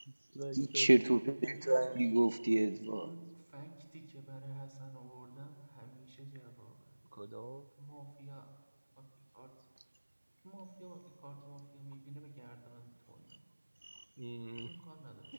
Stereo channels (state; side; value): inverted; both; correlation -1.00